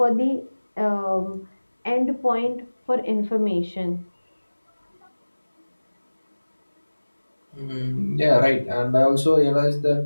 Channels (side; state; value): both; inverted; correlation -1.00